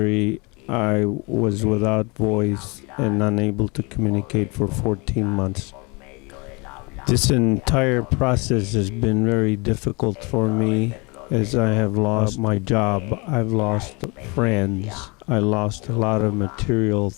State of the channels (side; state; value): right; quieter; 28.7 dB